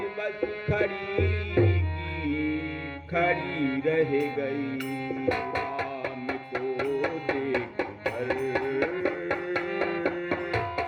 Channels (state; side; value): identical; both; correlation 1.00